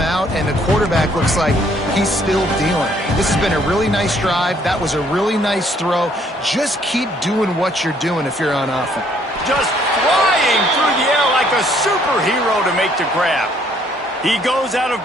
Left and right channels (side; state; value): both; normal; correlation 0.65